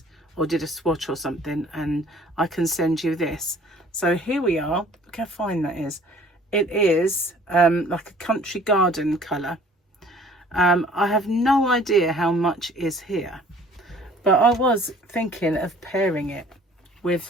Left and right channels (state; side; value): normal; both; correlation 0.53